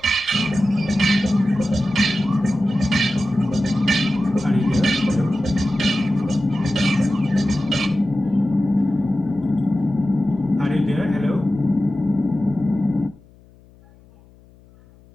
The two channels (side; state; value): left; noise; hum, 27 dB below the sound